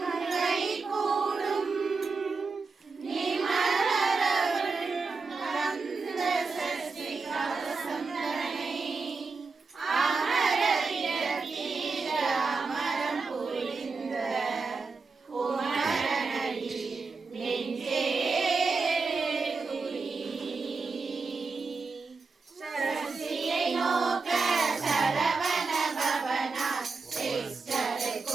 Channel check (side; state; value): left; quieter; 4.3 dB